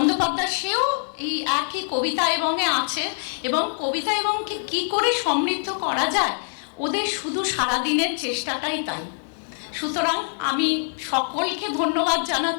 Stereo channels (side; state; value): right; silent; digital silence